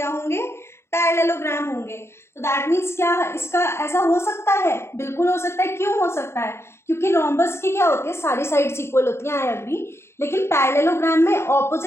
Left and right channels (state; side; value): late; right; 0.12 ms